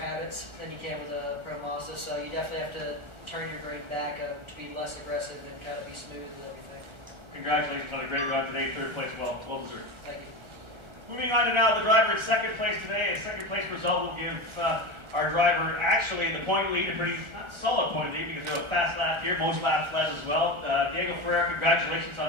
than you can with a Pro Mazda, so you definitely have to turn your brain back to be less aggressive and kind of be smooth with everything. Congratulations on a great run today, 3rd place, well deserved. Thank you. Moving on to now the driver in 2nd place today. A 2nd place result will give our driver actually the point lead, a pretty not solid point lead because they have a fast lap here, most laps led as well. Diego Ferreira, congratulations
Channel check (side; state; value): left; late; 1.3 ms